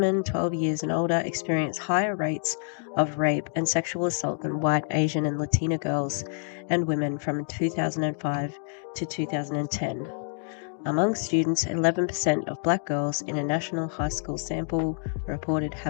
12 years and older experience higher rates of rape and sexual assault than white, Asian, and Latina girls and women from 2005 to 2010. Among students, 11% of Black girls in a national high school sample reported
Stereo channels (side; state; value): right; silent; 60 dB below the other